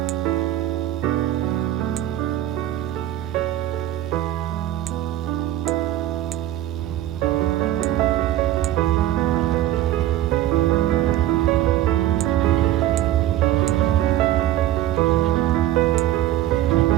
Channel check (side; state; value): left; quieter; 13.3 dB